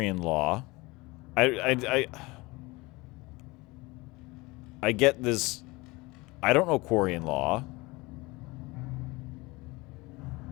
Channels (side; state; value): right; quieter; 23.2 dB